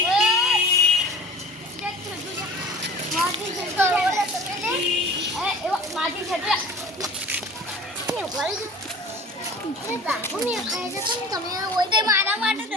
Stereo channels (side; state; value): both; normal; correlation 0.42